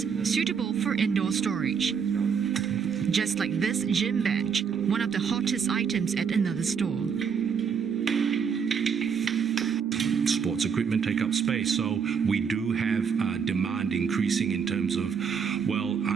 suitable for indoor storage. Just like this gym bench, one of the hottest items at another store. Sports equipment take up space, so we do have demand increasing in terms of,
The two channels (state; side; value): quieter; left; 6.6 dB